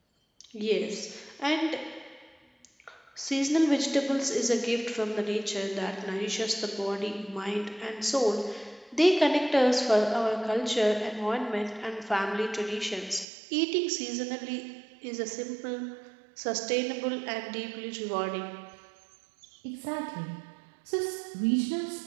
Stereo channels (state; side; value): drops out; left; at 13.2 s